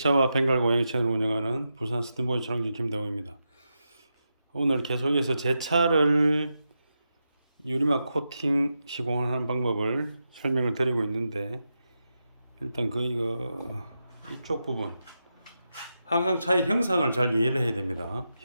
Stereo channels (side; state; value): both; inverted; correlation -0.88